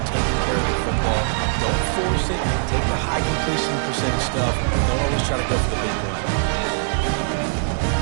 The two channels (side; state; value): left; silent; digital silence